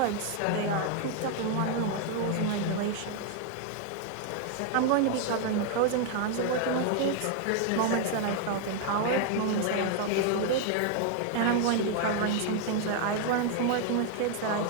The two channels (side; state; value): both; different; correlation 0.00